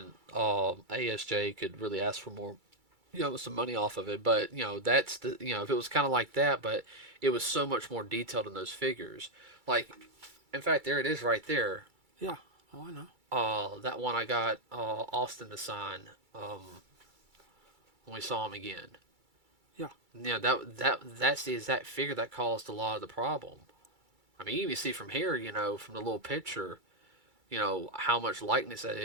ASJ could really ask for more, some money off of it. But that's if it was kind of like that, but it was so much more detailed in those figures. Like, in fact, there it is right there. Yeah. Oh, I know. That one I got Austin to sign when we saw him again. Yeah. That's the exact figure that caused a lot of the problem. I mean, you even see from here, from the little picture, how much likeness that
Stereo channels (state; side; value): late; left; 2.3 ms